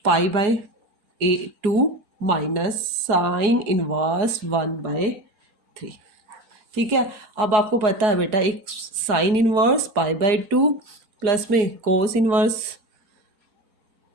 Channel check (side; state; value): left; late; 4.8 ms